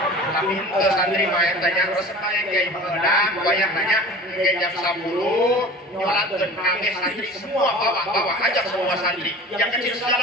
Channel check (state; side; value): normal; both; correlation 0.39